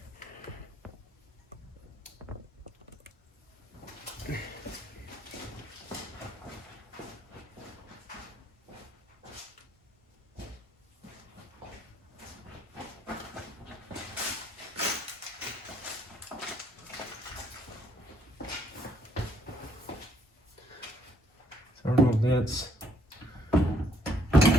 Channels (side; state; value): both; normal; correlation 0.67